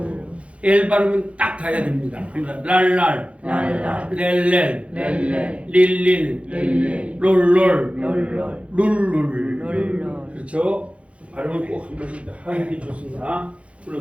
L 발음은 딱 닿아야 됩니다. 랄랄. 렐렐. 릴릴. 룰룰. 그렇죠? 발음을 꼭 한 번씩 하는 게 좋습니다.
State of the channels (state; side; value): late; left; 0.062 ms